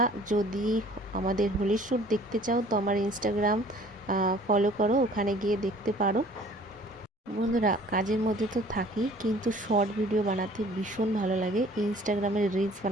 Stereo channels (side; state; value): both; normal; correlation 0.52